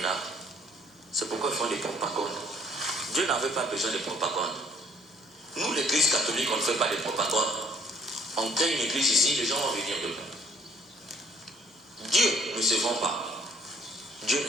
C'est pourquoi ils font des propagandes. Dieu n'avait pas besoin de propagande. Nous, l'église catholique, on ne fait pas de propagande. On crée une église ici, les gens vont venir dedans. Dieu ne se vend pas. Dieu ne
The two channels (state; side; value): normal; both; correlation 0.60